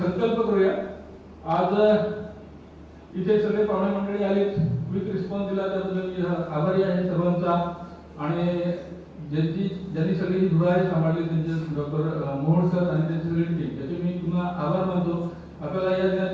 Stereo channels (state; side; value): identical; both; correlation 1.00